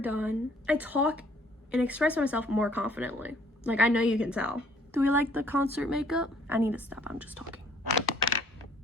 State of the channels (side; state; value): both; normal; correlation 0.59